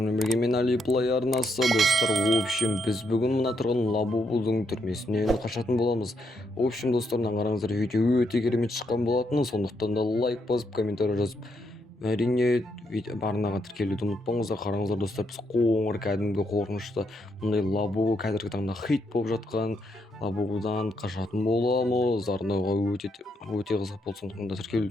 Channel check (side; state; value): both; normal; correlation 0.78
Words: бірге мен Али Плей арнасы достар. В общем, біз бүгін мына тұрған Лабубудың түрмесінен қашатын боламыз. В общем, достар, қараңыздар, видео өте керемет шыққан болатын, сондықтан да лайк басып, комментарий жазып, әрине барынаға тіркелуді ұмытпаңыздар. Қараңыздар достар, біз қоңыр кәдімгі қорқынышты мұндай Лабубу қазіргі таңда хит болып жатқан Лабубудан қашатын боламыз. Арнауға өте қызық болды, сондықтан да